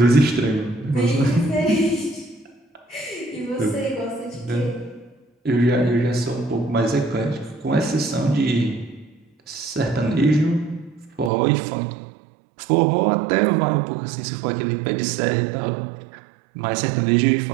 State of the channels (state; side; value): drops out; left; at 11.3 s